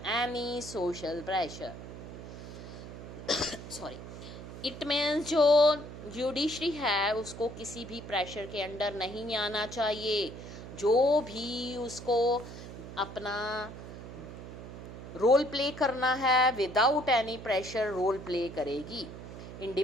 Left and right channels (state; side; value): noise; right; hum, 12 dB below the sound